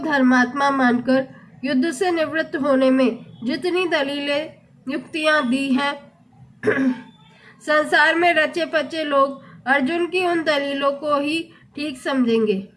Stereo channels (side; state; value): both; identical; correlation 1.00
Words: धर्मात्मा मानकर युद्ध से निवृत्त होने में जितनी दलीलें युक्तियां दी हैं, संसार में रचे पचे लोग अर्जुन की उन दलीलों को ही ठीक समझेंगे